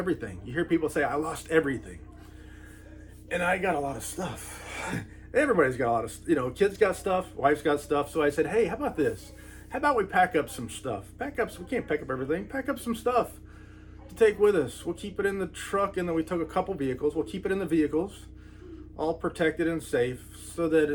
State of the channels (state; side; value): identical; both; correlation 1.00